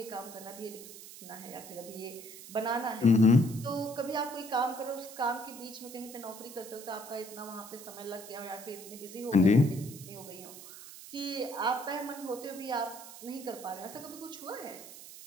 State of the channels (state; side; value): noise; right; hiss, 14 dB below the sound